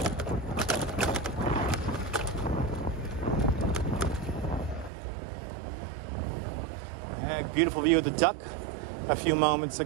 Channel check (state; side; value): drops out; left; at 4.9 s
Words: Beautiful view of the duck a few moments